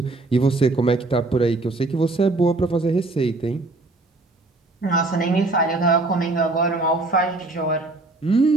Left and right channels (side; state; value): left; quieter; 3.1 dB